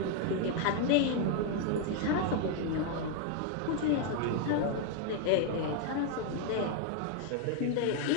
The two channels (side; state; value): both; different; correlation 0.00